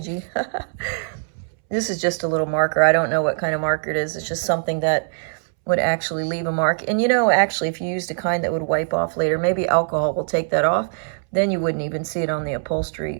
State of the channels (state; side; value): silent; left; 64 dB below the other